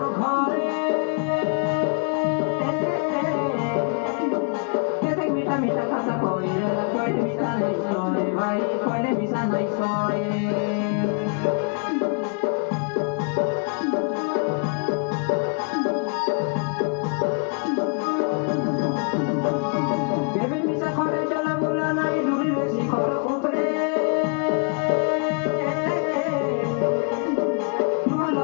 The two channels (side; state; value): right; quieter; 38.4 dB